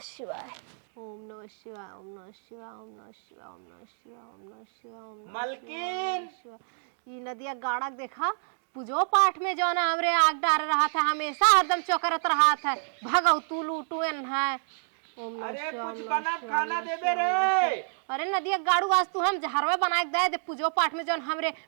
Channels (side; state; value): left; silent; digital silence